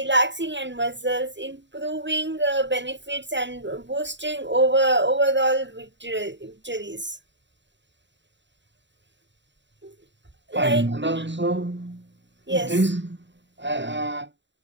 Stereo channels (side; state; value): left; late; 0.53 ms